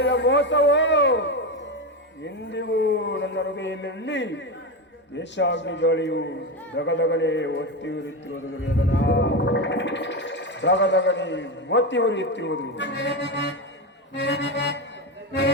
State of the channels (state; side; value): normal; both; correlation 0.16